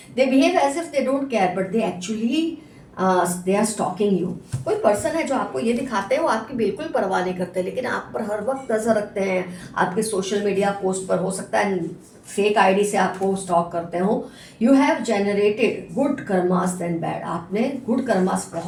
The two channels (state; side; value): identical; both; correlation 1.00